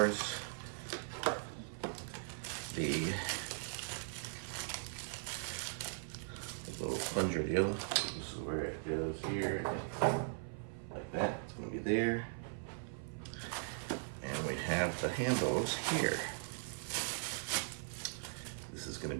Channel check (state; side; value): silent; left; 51 dB below the other